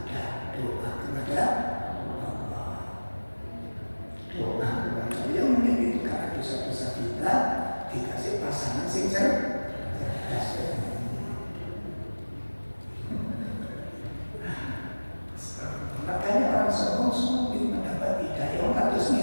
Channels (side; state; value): both; inverted; correlation -1.00